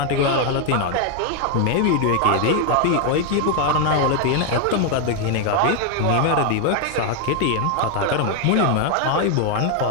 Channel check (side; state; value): both; different; correlation 0.01